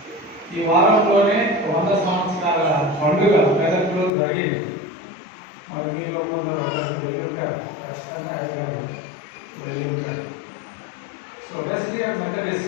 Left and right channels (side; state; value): right; drops out; at 4.1 s